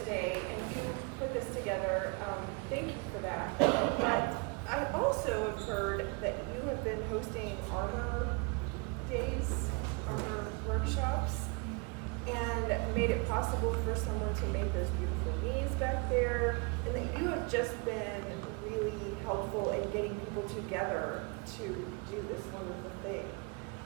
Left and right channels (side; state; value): left; quieter; 31.2 dB